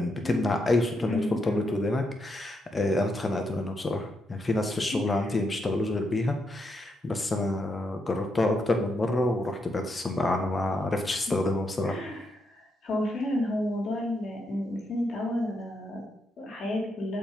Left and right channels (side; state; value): both; normal; correlation 0.81